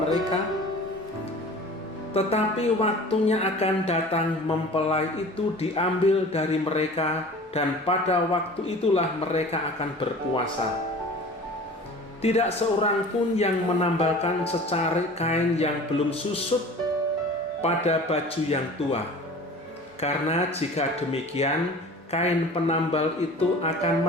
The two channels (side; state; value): both; normal; correlation 0.42